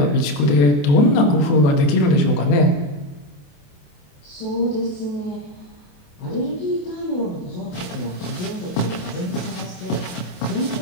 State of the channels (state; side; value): late; right; 28 ms